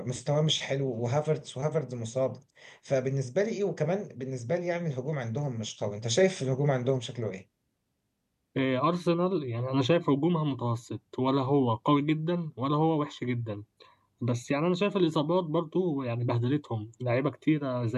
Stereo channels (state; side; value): identical; both; correlation 1.00